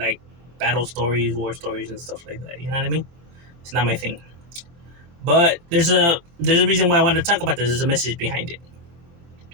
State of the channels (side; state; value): left; late; 23 ms